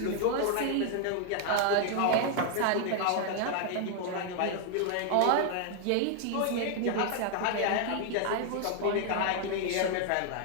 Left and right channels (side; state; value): both; different; correlation 0.00